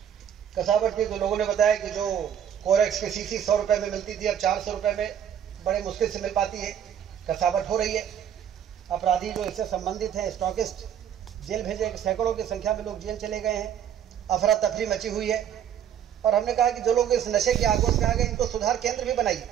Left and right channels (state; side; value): quieter; left; 9.3 dB